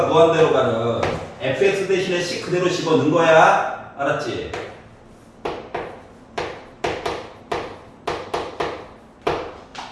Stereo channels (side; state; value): both; identical; correlation 1.00